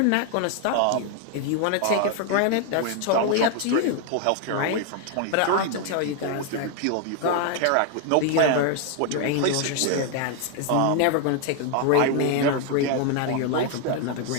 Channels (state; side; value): different; both; correlation 0.00